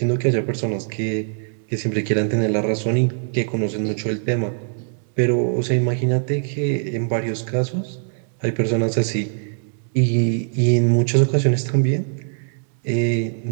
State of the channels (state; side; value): silent; left; digital silence